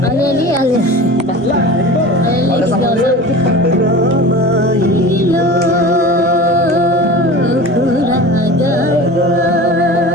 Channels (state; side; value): normal; both; correlation 0.35